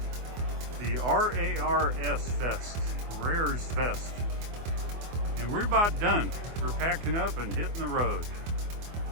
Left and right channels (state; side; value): late; left; 24 ms